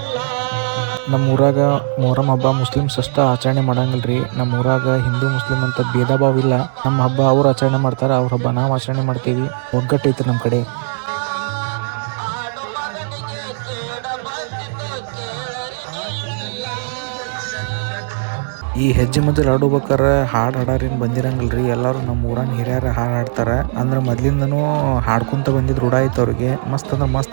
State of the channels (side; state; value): left; silent; digital silence